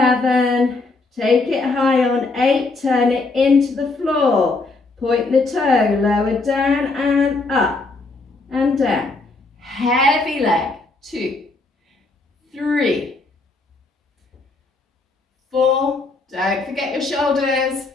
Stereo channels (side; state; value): right; quieter; 3.5 dB